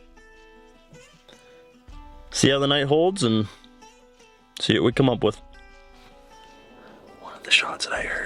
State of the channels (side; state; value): both; identical; correlation 1.00